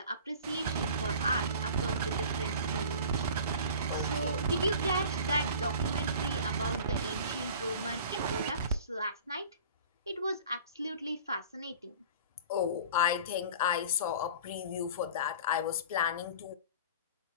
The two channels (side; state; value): both; inverted; correlation -0.41